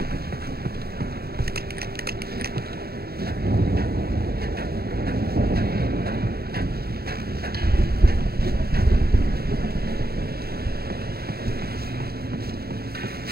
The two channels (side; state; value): left; late; 0.45 ms